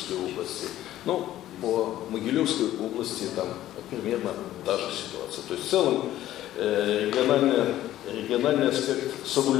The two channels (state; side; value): quieter; right; 13.6 dB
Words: области. Ну, по Могилевской области там примерно та же ситуация. То есть в целом региональный аспект